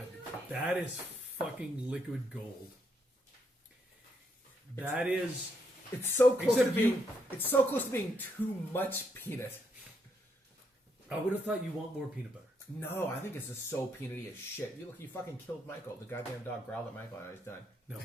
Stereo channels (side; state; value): both; normal; correlation 0.76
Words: that is fucking liquid gold. That is. It's so close Except to being. It's so close to being too much peanut. I would have thought you want more peanut butter. No, I think it's just so peanutty as shit. You look, you fucking killed Michael. The goddamn dog growled at Michael, and he's done. No,